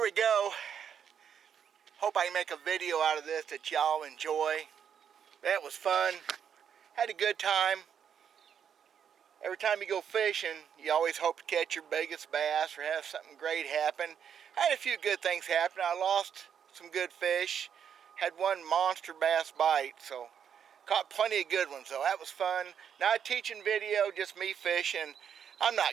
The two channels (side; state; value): left; quieter; 8.1 dB